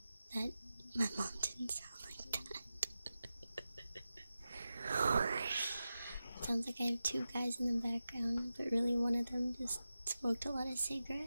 that my mom didn't sound like that. Sounds like I have two guys in the background, but really one of them just smoked a lot of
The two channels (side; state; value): both; inverted; correlation -0.93